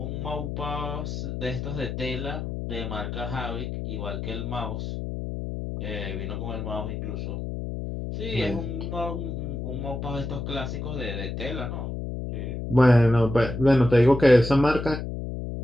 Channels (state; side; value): noise; left; hum, 5 dB below the sound